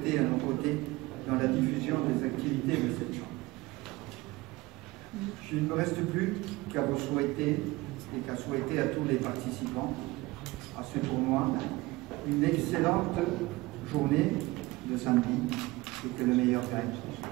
à nos côtés dans la diffusion des activités de cette chambre. Je ne me reste plus qu'à vous souhaiter, et qu'à souhaiter à tous les participants à ce tournoi, une excellente journée de samedi, et que le meilleur gagne.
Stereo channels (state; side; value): quieter; left; 21.0 dB